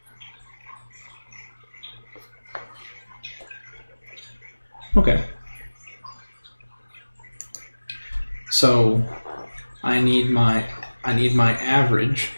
Okay. So I need my average.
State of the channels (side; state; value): both; inverted; correlation -1.00